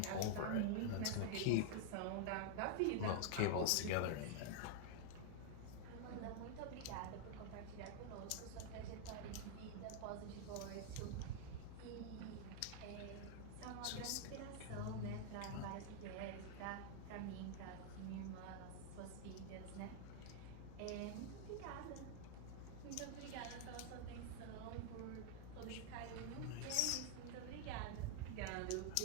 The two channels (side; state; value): both; different; correlation 0.00